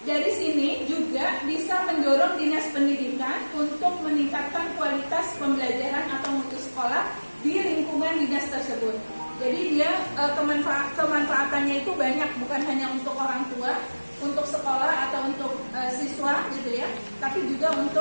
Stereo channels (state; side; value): inverted; both; correlation -1.00